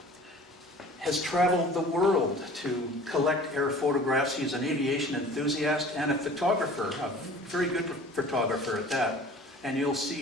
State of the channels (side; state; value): both; normal; correlation 0.46